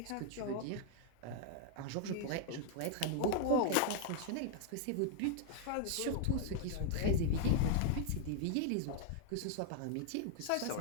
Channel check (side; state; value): both; different; correlation 0.00